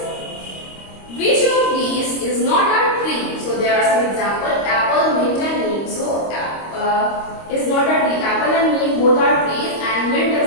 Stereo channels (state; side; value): late; right; 25 ms